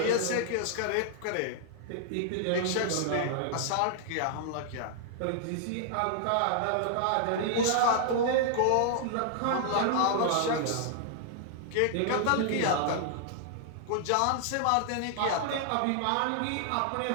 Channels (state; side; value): different; both; correlation -0.01